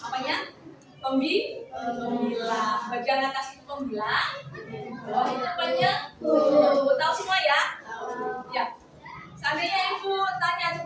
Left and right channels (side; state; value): both; identical; correlation 1.00